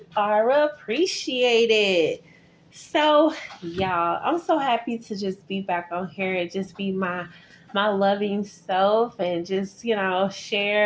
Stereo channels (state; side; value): identical; both; correlation 1.00